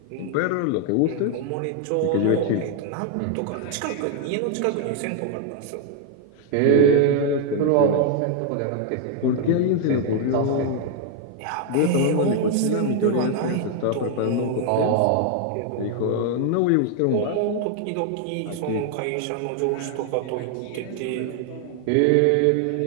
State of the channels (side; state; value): both; different; correlation 0.00